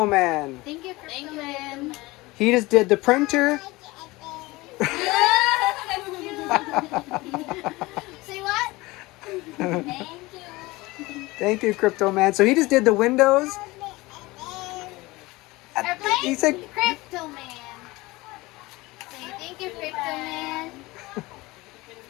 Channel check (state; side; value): quieter; right; 21.2 dB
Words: Man. Thank you, Crypto Man. He just did the printer. Say what? Thank you. Thank you, Crypto Man. So he just did the windows. Airplane? He said, Crypto Man. Say thank you, Crypto Man.